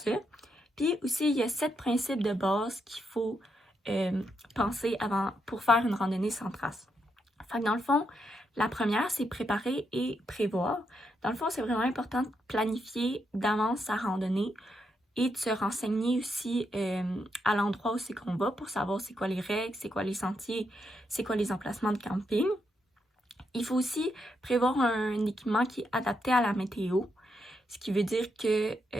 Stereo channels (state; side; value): normal; both; correlation 0.80